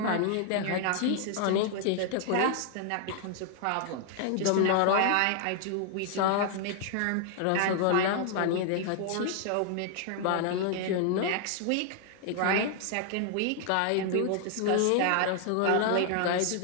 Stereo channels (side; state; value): both; different; correlation 0.00